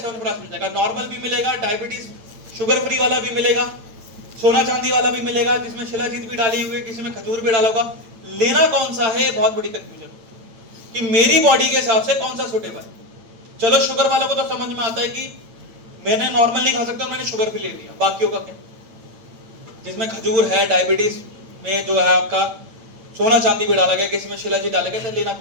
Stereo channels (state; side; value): late; left; 8.9 ms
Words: मिल जाएगा। नॉर्मल भी मिलेगा, डायबिटीज शुगर फ्री वाला भी मिलेगा, सोना चांदी वाला भी मिलेगा, जिसमें शिलाजीत भी डाली हुई है, किसी में खजूर भी डाला होगा। लेना कौन सा है, बहुत बड़ी कंफ्यूजन कि मेरी बॉडी के हिसाब से कौन सा सूटेबल है। चलो शुगर वालों को तो समझ में आता है कि मैंने नॉर्मल नहीं खा सकता, मैंने शुगर फ्री ले लिया। बाकियों का क्या, जिसमें खजूर है, डायबिटीज में जो है आपका सोना चांदी भी डाला गया, किसी में शिलाजीत डाला गया, तो लेना